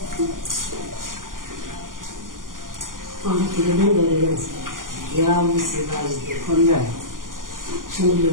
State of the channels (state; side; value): late; left; 0.90 ms